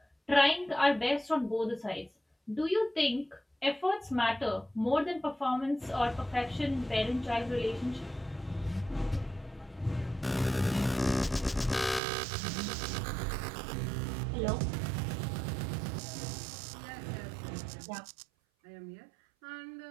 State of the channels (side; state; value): left; drops out; at 12.0 s